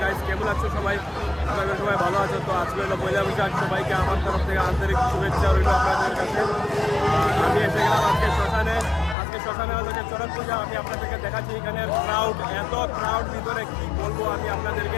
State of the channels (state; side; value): drops out; right; at 9.2 s